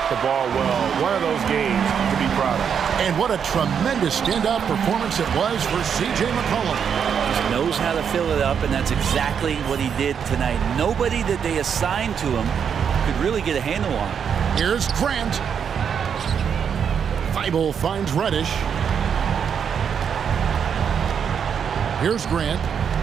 the ball well. One of those games to be proud of. And what a tremendous standout performance it was for C.J. McCollum. He knows how to fill it up, and that's exactly what he did tonight. Nobody that they assigned to him could really get a handle on it. Here's Grant. Thibault finds Reddish. Here's Grant.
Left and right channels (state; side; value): quieter; left; 7.4 dB